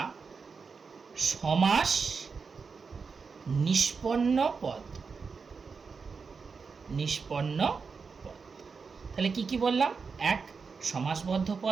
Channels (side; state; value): left; quieter; 5.2 dB